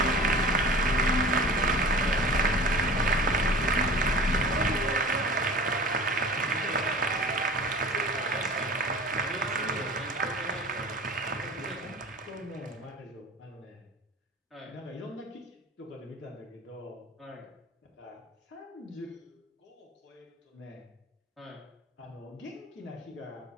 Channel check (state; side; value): normal; both; correlation 0.39